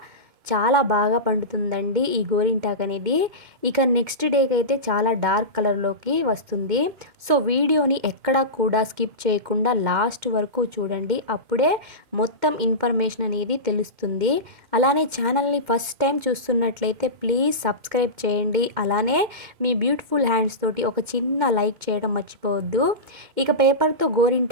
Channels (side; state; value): left; late; 2.2 ms